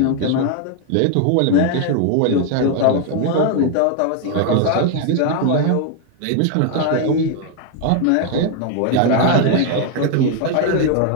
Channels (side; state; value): both; different; correlation 0.00